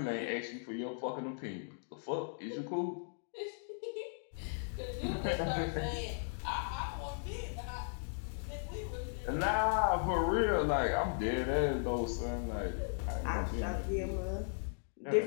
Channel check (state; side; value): silent; right; digital silence